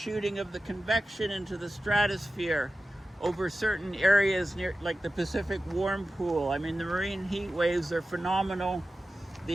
of the convection into the stratosphere over certain areas near, like the Pacific warm pool. I mean, the marine heat waves are phenomenal.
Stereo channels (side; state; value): both; normal; correlation 0.94